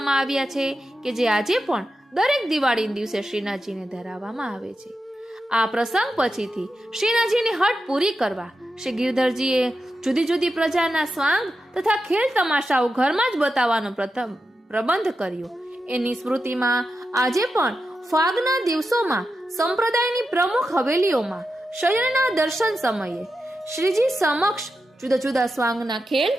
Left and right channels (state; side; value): normal; both; correlation 0.89